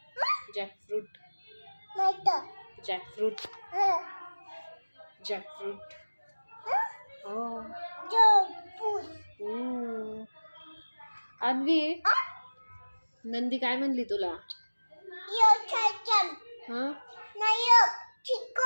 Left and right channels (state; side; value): inverted; both; correlation -1.00